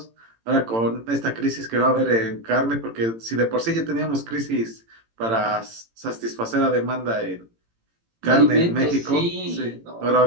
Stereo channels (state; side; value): late; left; 18 ms